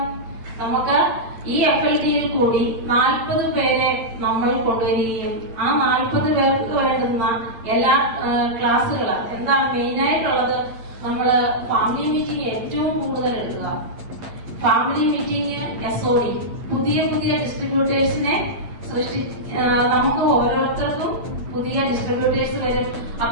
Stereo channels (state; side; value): late; left; 8.8 ms